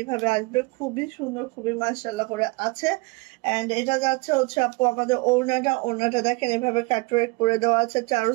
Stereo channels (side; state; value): left; quieter; 26.2 dB